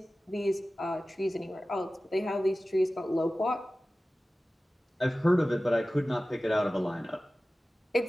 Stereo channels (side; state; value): both; normal; correlation 0.96